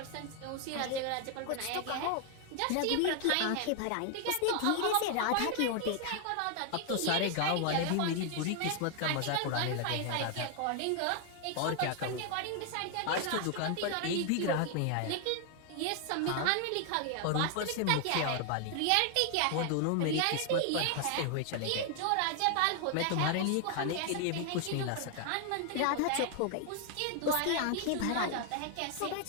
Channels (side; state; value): both; different; correlation 0.00